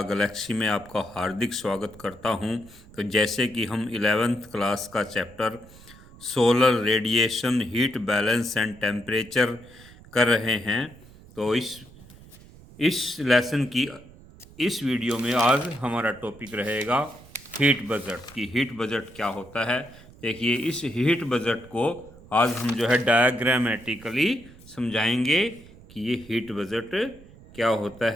Galaxy में आपका हार्दिक स्वागत करता हूं। तो जैसे कि हम 11th क्लास का chapter solar radiation, heat balance and temperature कर रहे हैं, तो इस लेसन की इस वीडियो में आज हमारा टॉपिक रहेगा हीट बजट की हीट बजट क्या होता है। देखिए, इस हीट बजट को आज हम जो है डायग्रामेटिकली समझाएंगे कि ये हीट बजट क्या होता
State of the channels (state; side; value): noise; right; rumble, 21 dB below the sound